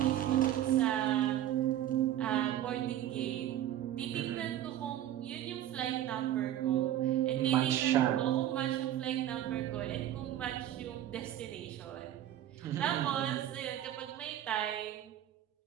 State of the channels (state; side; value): quieter; left; 12.1 dB